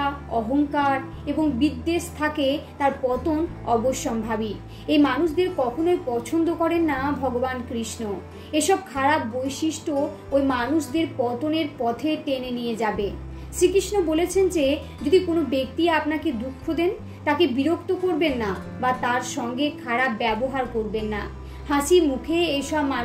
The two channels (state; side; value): identical; both; correlation 1.00